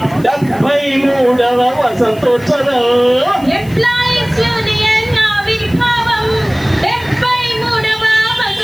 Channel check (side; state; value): left; noise; hiss, 23 dB below the sound